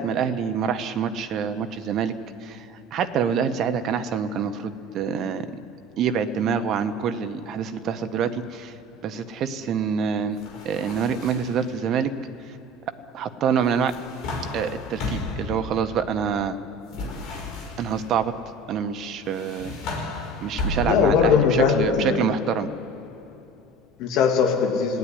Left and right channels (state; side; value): normal; both; correlation 0.40